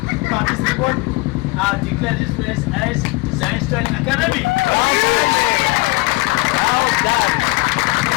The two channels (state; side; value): quieter; right; 23.6 dB